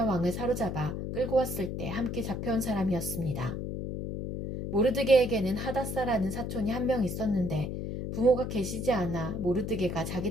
왕을 사로잡아 끌고 왔을 때 함께 잡혀온 사람이었습니다. 모르드게에게는 하다사라는 사촌이 한 명 있었는데 부모가 계시지 않아 모르드게가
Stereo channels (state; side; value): noise; left; hum, 4 dB below the sound